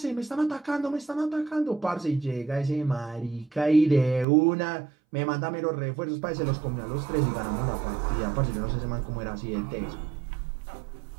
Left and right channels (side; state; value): left; drops out; at 4.2 s